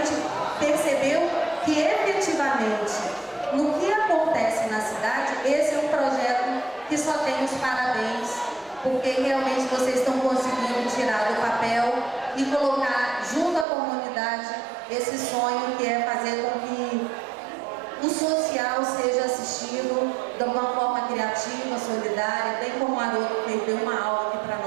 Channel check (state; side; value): drops out; left; at 13.7 s